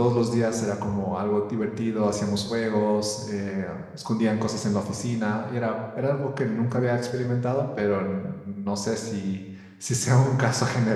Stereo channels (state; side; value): identical; both; correlation 1.00